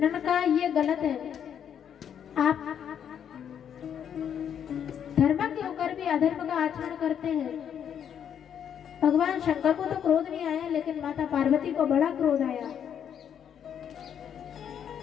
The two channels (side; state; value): right; quieter; 8.7 dB